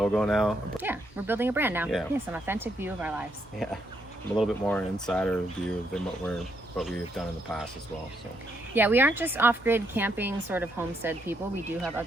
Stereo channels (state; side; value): normal; both; correlation 0.76